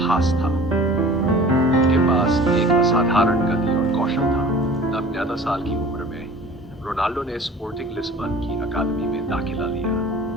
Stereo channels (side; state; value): both; normal; correlation 0.44